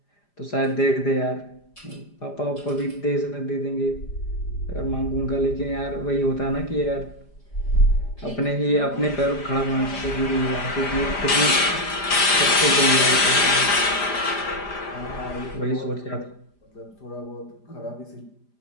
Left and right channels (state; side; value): late; right; 5.0 ms